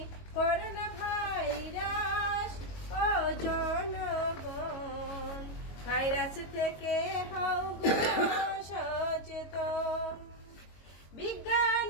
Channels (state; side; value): late; right; 22 ms